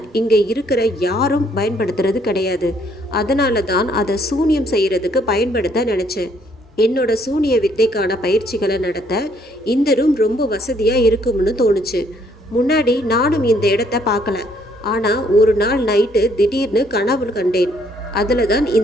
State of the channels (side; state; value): both; normal; correlation 0.67